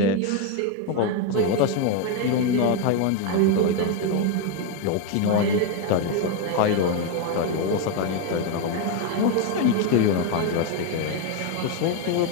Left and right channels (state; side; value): different; both; correlation 0.01